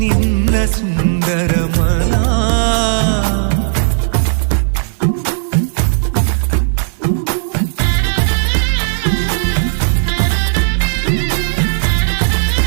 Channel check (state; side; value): silent; left; digital silence